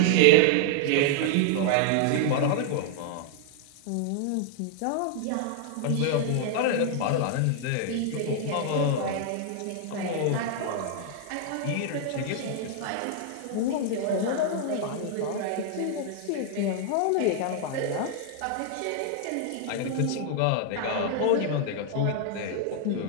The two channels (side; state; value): both; different; correlation 0.00